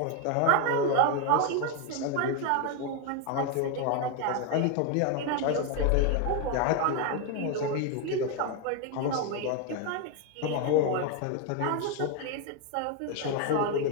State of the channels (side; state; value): both; different; correlation 0.01